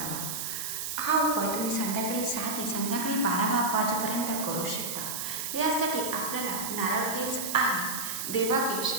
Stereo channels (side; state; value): right; noise; hiss, 4 dB below the sound